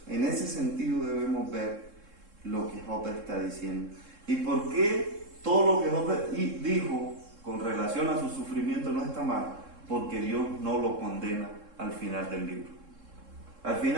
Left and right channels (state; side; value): late; left; 3.7 ms